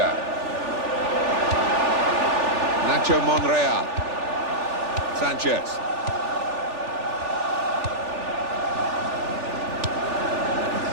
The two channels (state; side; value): late; left; 3.4 ms